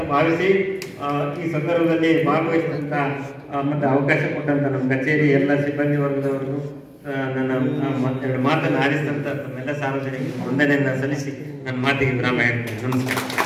ಭಾವಿಸಿ ಈ ಸಂದರ್ಭದಲ್ಲಿ ಭಾಗವಹಿಸಿದಂತ ಮತ್ತೆ ಅವಕಾಶ ಕೊಟ್ಟಂತ ನಮ್ಮ ಕಚೇರಿ ಎಲ್ಲ ಸಿಬ್ಬಂದಿ ವರ್ಗದವರಿಗೂ ನನ್ನ ಎರಡು ಮಾತನ್ನು ಆರಿಸಿದಂತ ನಮ್ಮೆಲ್ಲ ಸಾರ್ವಜನಿಕ ವಂದನೆಯನ್ನ ಸಲ್ಲಿಸಿ ನನ್ನ ಮಾತಿಗೆ ವಿರಾಮ ಹೇಳ್ತೇನೆ. ನಮಸ್ಕಾರ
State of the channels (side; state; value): both; identical; correlation 1.00